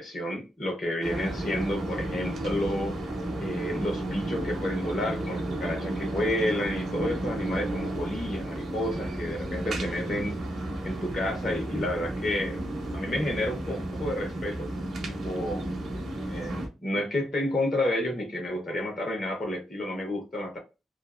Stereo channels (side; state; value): both; normal; correlation 0.80